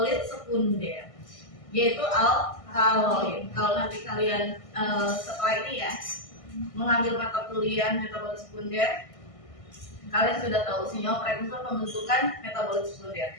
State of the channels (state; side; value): late; right; 1.6 ms